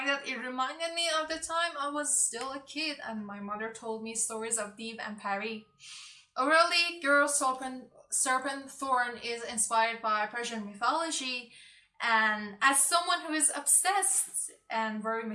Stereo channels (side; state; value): both; identical; correlation 1.00